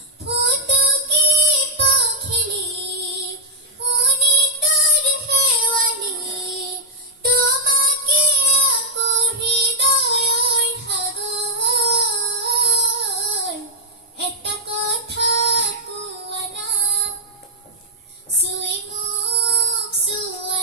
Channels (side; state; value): both; normal; correlation -0.06